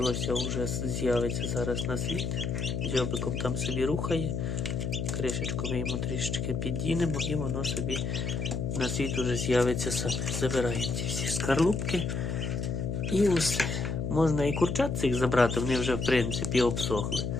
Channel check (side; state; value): left; noise; hum, 2 dB below the sound